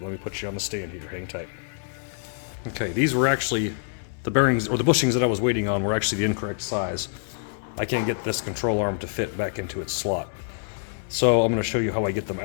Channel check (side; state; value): right; silent; 61 dB below the other